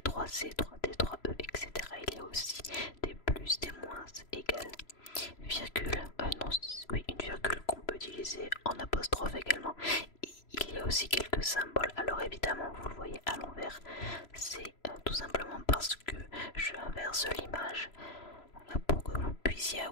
3C, 3D, 3E, etc. Il y a aussi des plus, des moins, égales, virgule, non, oui, une virgule qu'on peut utiliser en apostrophe également. Et il y a aussi quelques symboles. Alors évidemment vous le voyez à l'envers, c'est tout simplement parce que je inverse l'image pour que vous puissiez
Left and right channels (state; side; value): late; right; 3.0 ms